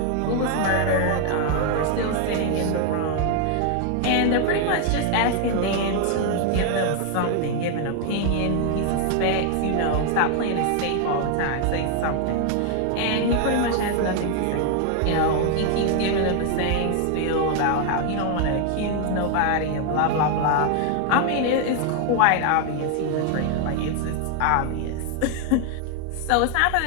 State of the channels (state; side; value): different; both; correlation 0.00